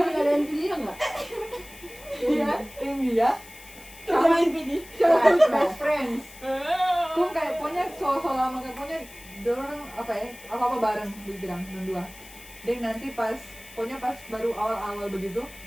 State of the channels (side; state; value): left; noise; hiss, 19 dB below the sound